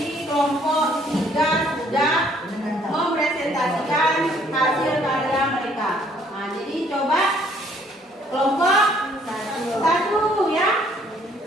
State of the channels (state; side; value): normal; both; correlation 0.63